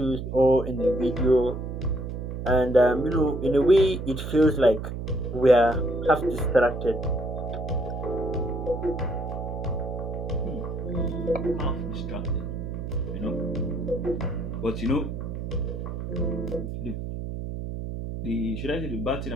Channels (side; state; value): right; noise; hum, 6 dB below the sound